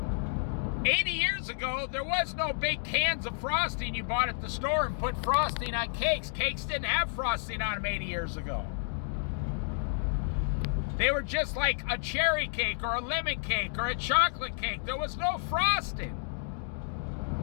80 years ago, there was no big cans of frosting you bought at the store and put frosting on cakes. Cakes didn't have frosting on them 80 years ago. They were just like a cherry cake or a lemon cake or a chocolate cake. There was no frosting.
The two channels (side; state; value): right; silent; digital silence